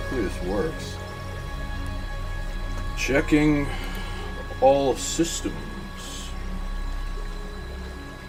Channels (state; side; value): identical; both; correlation 1.00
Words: this works. Checking all systems.